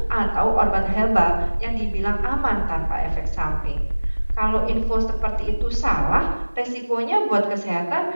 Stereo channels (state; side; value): inverted; both; correlation -1.00